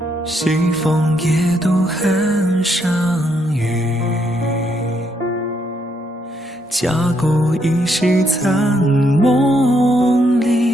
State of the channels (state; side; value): normal; both; correlation 0.75